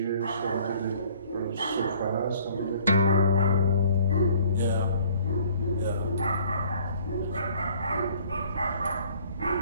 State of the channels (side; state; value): both; inverted; correlation -0.56